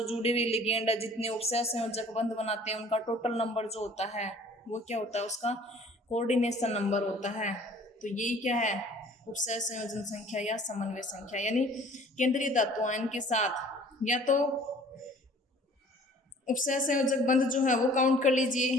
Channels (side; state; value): both; normal; correlation 0.51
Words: जुड़े हुए लिगेंड है, जितने उपसय संयोजक बंध बनाते हैं उनका टोटल नंबर जो होता है वो क्या होता है, उसका कोऑर्डिनेशन नंबर होता है। तो यही क्या है, उपसय संयोजन संख्या या समन्वय संख्या, यानी केंद्रीय धातु आयन के साथ या तो उपसय संयोजक बंध जो है वो काउंट कर लीजिए,